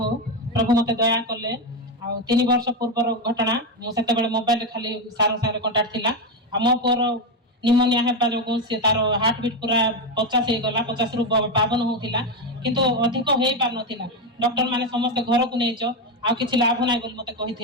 ହଉ। ପ୍ରଭୁ ମତେ ଦୟା କଲେ ଆଉ 3 ବର୍ଷ ପୂର୍ବର ଘଟଣା ମୁଁ ସେତେବେଳେ ମୋବାଇଲରେ ଖାଲି ସାର୍ ସାଙ୍ଗରେ କଣ୍ଟାକ୍ଟ ଥିଲା ଆଉ ମୋ ପୁଅର ନିମୋନିଆ ହେବା ଯୋଗୁଁ ସେ ତାର ହାର୍ଟ ବିଟ୍ ପୁରା 50 ହେଇଗଲା 50ରୁ 52 ହଉଥିଲା କିନ୍ତୁ ଅଧିକ ହେଇପାରୁନଥିଲା ଡକ୍ଟର ମାନେ ସମସ୍ତେ ଘରକୁ ନେଇଛ ଆଉ କିଛି ଲାଭ ନାହିଁ ବୋଲି ମତେ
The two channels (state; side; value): normal; both; correlation 0.10